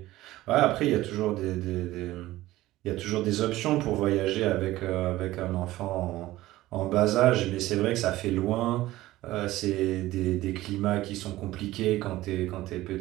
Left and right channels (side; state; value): left; quieter; 16.6 dB